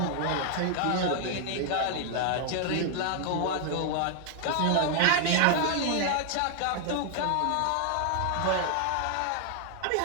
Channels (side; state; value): both; different; correlation 0.00